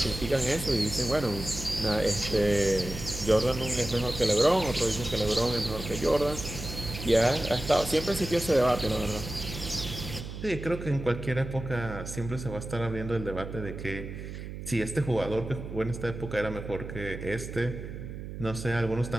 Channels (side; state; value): right; noise; hum, 9 dB below the sound